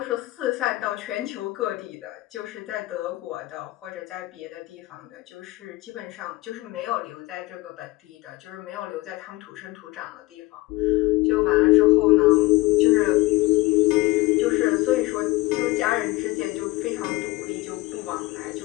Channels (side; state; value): right; quieter; 20.6 dB